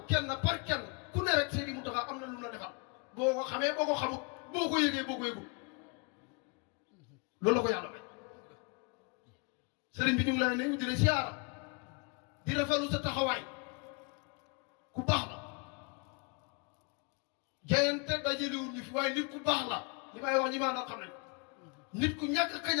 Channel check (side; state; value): right; quieter; 33.9 dB